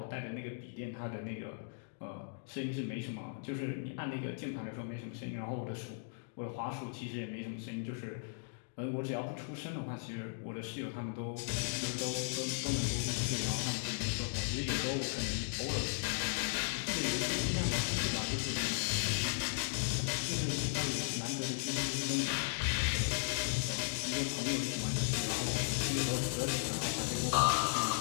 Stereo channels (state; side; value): silent; right; digital silence